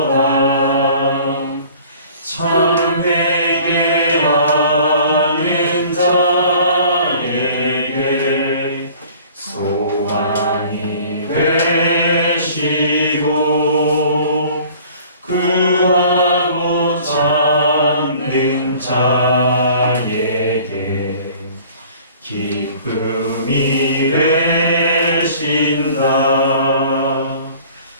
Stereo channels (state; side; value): inverted; both; correlation -0.50